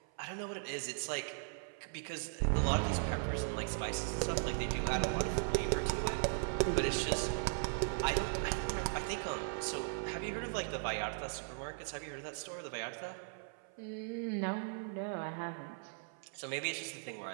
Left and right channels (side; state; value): left; silent; 52 dB below the other